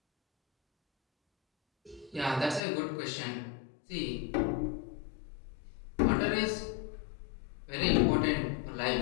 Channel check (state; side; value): drops out; right; at 2.6 s